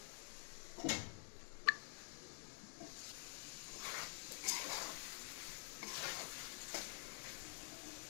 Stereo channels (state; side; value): silent; right; digital silence